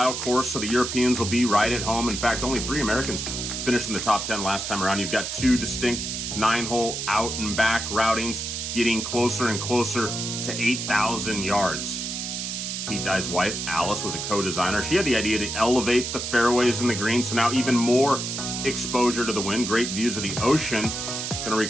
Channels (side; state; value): right; noise; hiss, 4 dB below the sound